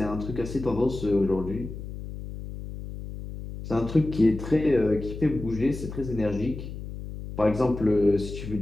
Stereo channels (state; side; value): noise; left; hum, 9 dB below the sound